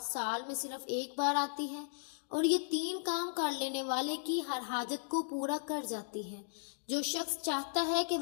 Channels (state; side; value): silent; right; digital silence